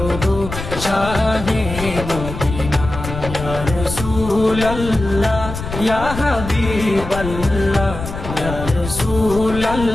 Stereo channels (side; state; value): left; noise; rumble, 8 dB below the sound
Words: গো শাহে মদিনা। ইয়া রাসূলুল্লাহ ইয়া হাবিবাল্লাহ, ইয়া